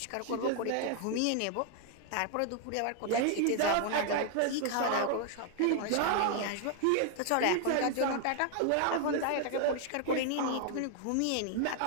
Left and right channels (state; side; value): different; both; correlation 0.00